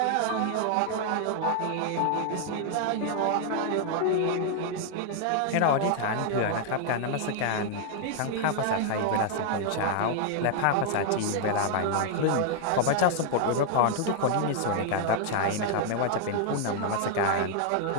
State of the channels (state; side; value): different; both; correlation 0.00